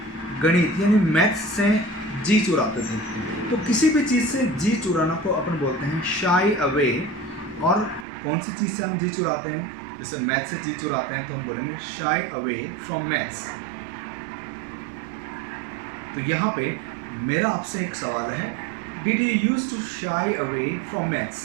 गणित यानी मैथ्स से जी चुराते थे। तो किसी भी चीज़ से जी चुराना को अपन बोलते हैं शाई अवे और कौन सी चीज़ से हम जी चुराते हैं? जैसे मैथ से जी चुराते हैं तो हम बोलेंगे शाई अवे फ्रॉम मैथ्स। तो यहाँ पे मेरा आपसे एक सवाल है, did you use to shy away from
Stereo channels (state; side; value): drops out; left; at 8.1 s